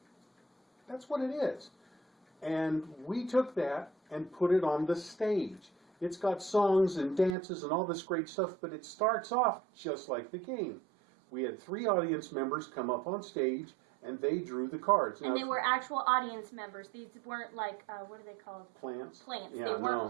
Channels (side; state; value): left; drops out; at 7.4 s